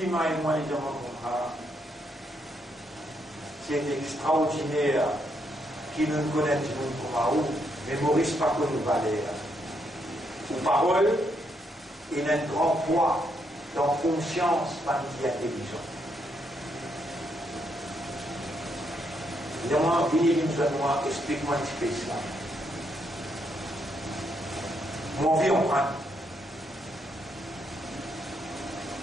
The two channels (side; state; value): both; normal; correlation 0.77